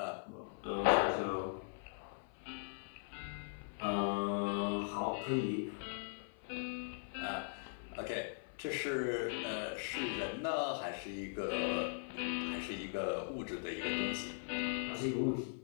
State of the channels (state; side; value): silent; right; 51 dB below the other